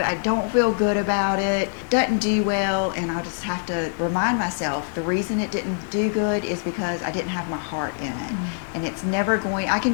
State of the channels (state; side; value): silent; right; digital silence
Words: I don't feel good about it, doesn't do well, and I'll just have to remind myself the reason it didn't do good is because I didn't have my heart in it. And it's never going,